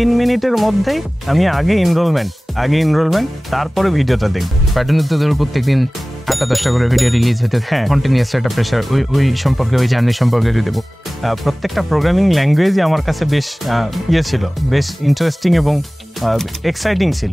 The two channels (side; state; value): both; normal; correlation 0.98